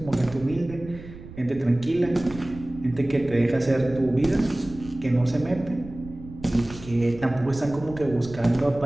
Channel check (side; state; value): right; noise; rumble, 16 dB below the sound